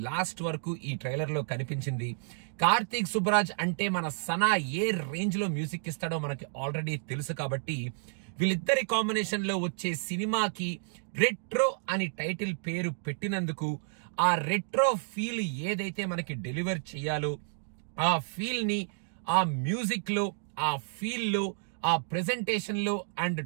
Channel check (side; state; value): left; silent; digital silence